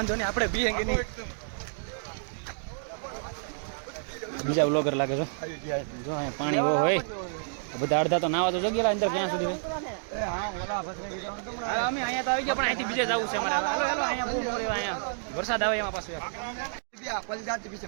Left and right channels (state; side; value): silent; left; digital silence